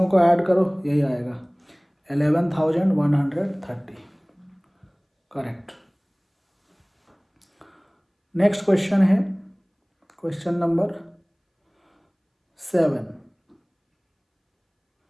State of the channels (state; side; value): identical; both; correlation 1.00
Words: को ऐड करो यही आएगा 11,130। करेक्ट। नेक्स्ट क्वेश्चन है question number 7।